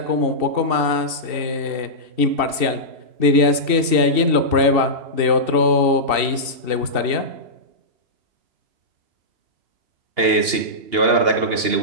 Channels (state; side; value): late; left; 2.7 ms